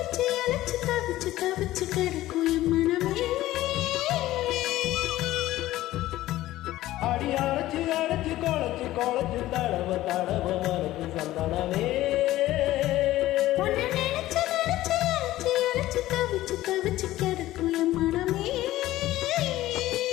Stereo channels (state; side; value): quieter; right; 15.5 dB